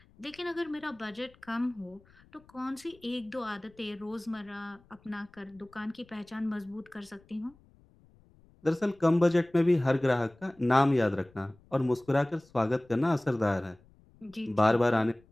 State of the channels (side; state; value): left; noise; rumble, 29 dB below the sound